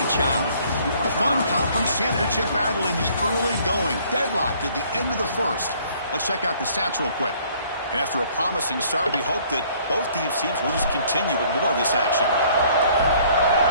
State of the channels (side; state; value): both; inverted; correlation -0.59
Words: job. A fun conference championship battle in the early going. Deadlocked at the end of the first. Let's check out the stats real quick. And after a promising start, we hope that both these teams will just continue with more of this action.